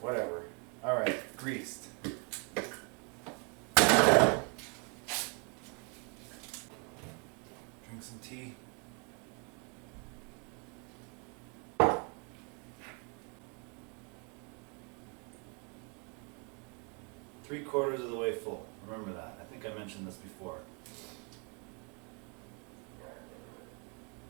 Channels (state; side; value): quieter; left; 35.5 dB